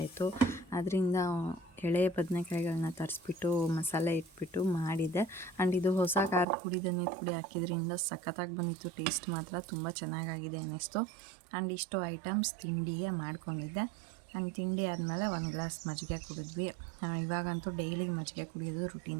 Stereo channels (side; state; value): left; drops out; at 6.5 s